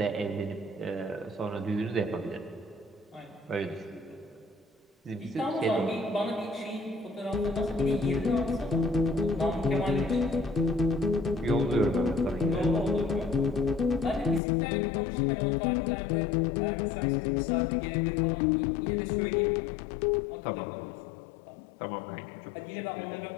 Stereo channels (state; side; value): drops out; right; at 14.4 s